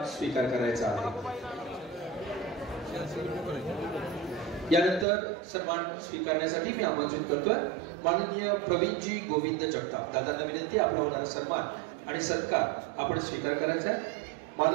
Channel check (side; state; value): left; drops out; at 5.1 s